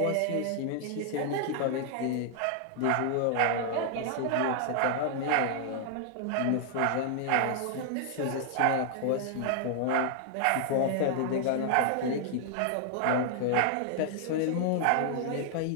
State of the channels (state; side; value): different; both; correlation 0.00